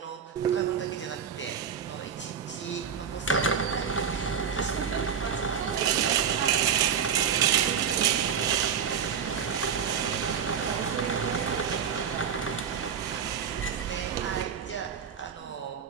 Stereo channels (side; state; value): left; quieter; 7.5 dB